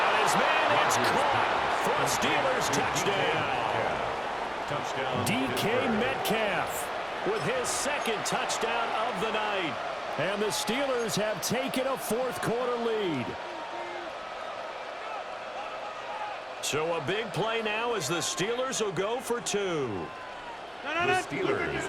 his man. It's caught for a Steelers touchdown. DK Metcalf with his 2nd touchdown of the night. And the Steelers have taken a fourth quarter lead. So a big play now as the Steelers will go for 2. The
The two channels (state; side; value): identical; both; correlation 1.00